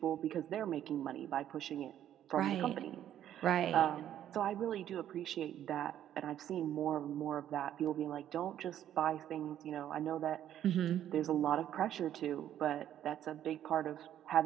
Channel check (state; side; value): quieter; left; 11.1 dB